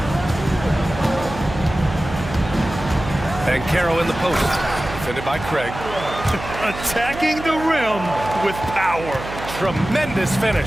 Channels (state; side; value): noise; right; hum, 10 dB below the sound